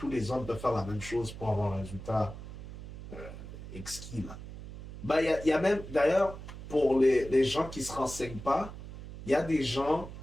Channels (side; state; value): right; noise; hum, 12 dB below the sound